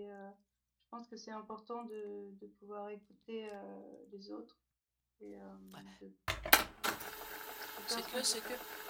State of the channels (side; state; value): both; identical; correlation 1.00